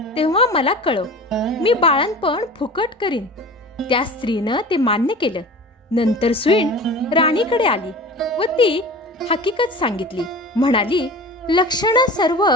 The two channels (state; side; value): normal; both; correlation 0.37